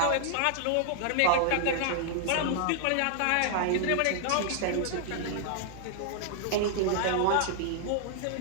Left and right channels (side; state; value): both; different; correlation -0.01